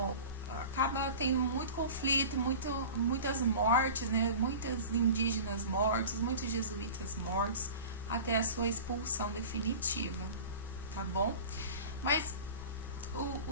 tendo muito conflito, muitas mortes, né? Muitos indígenas mortos, muitos jesuítas mortos, até a sua expulsão definitiva, tá bom? Mas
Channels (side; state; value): both; inverted; correlation -0.37